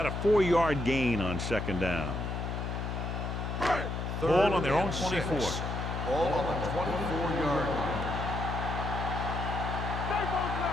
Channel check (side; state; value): left; noise; hum, 3 dB below the sound